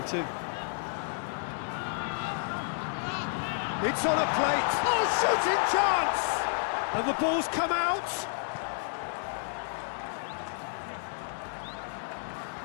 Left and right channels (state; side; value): silent; right; 57 dB below the other